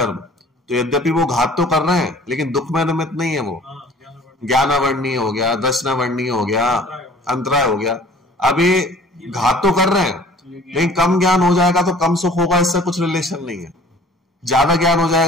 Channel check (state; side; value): normal; both; correlation 0.50